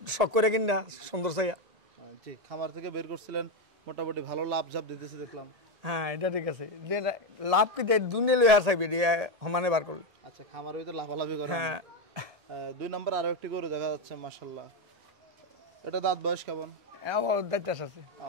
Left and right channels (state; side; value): late; left; 1.7 ms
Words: শখ করে কিনা সুন্দর চাইয়া। জি, খামার থেকে বের করছিলেন, মোটামুটি ভালো লাভ ঝাপ দিতেছি দেখলাম। হ্যাঁ, এটা ঠিক আছে। লাভ কি দুনিয়া লই আর চাইবে সমানে বার করলে। আচ্ছা, খামারের ভিতরে লাভালাভি করে। হ্যাঁ। 2 নম্বর আরো একটি গরু দেখা যাচ্ছে, মাশাআল্লাহ। এটা দাঁত বয়স কেমন? আমার দায়িত্ব আছে।